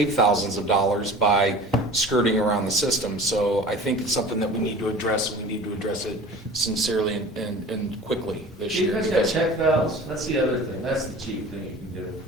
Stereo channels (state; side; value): normal; both; correlation 0.40